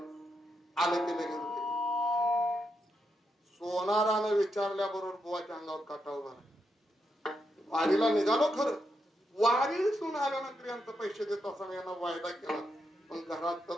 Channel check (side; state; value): both; normal; correlation 0.83